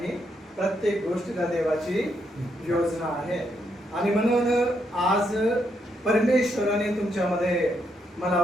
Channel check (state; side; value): normal; both; correlation 0.78